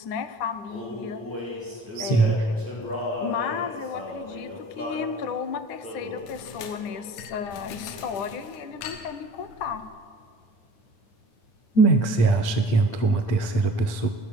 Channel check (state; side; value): late; right; 10 ms